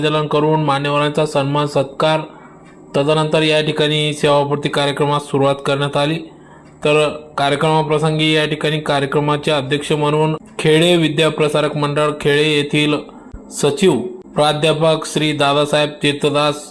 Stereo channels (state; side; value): identical; both; correlation 1.00